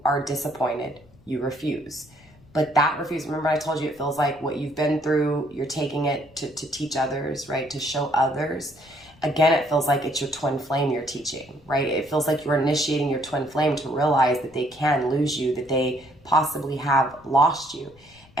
are disappointed, you refuse. But that refuse, remember I told you it feels like what you've been through, you're taking it to teach others, right? To show others. Again, it feels like it's your twin flame you're teaching, right? It feels like you're initiating your twin flame to realize that they can lose you, that they possibly have lost you.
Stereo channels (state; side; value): noise; left; rumble, 27 dB below the sound